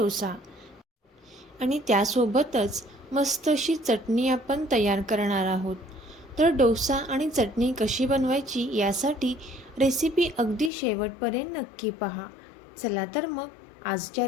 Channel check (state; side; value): drops out; right; at 10.7 s